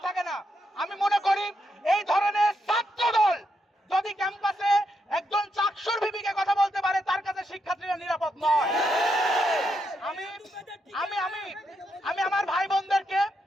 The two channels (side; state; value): both; normal; correlation 0.81